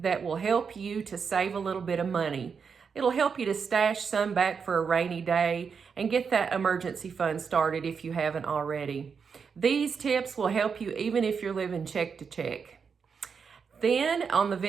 that will help you to save a little bit of money. It'll help you to stash some back for a rainy day and get that emergency fund started if you haven't already. These tips will help you even if you're living check to check. Then on the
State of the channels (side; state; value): left; quieter; 6.0 dB